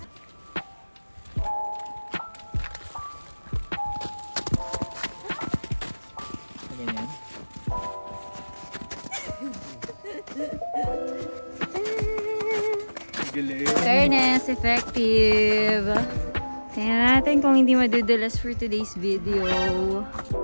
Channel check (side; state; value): both; inverted; correlation -1.00